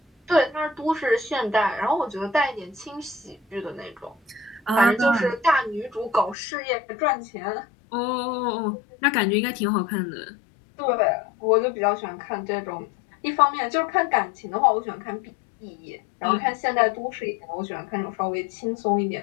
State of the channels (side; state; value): right; drops out; at 6.4 s